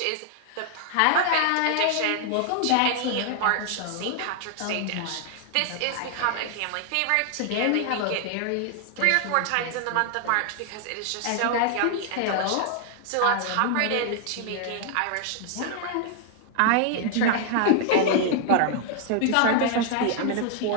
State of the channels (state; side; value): different; both; correlation 0.00